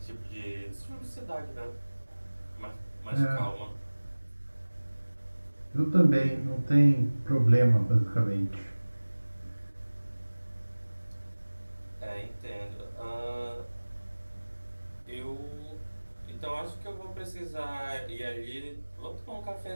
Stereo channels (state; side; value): inverted; both; correlation -1.00